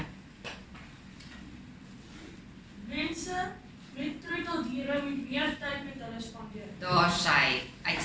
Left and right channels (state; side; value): identical; both; correlation 1.00